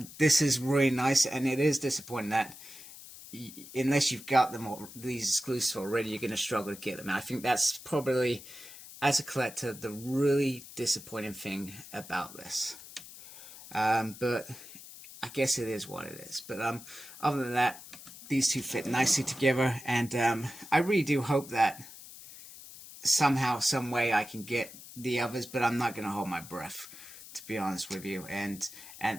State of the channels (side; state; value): left; noise; hiss, 16 dB below the sound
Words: this is really nice, and it is disappointing that unless you've got them all, these exclusives already, you're going to struggle to get them. And I think that's probably, as a collector, the really disappointing thing about this. But I guess it is what it is. But other than that, these two fit nicely together, and I really do hope that somehow, some way, I can get the others. But I'm not going to hold my breath, to be honest with you. And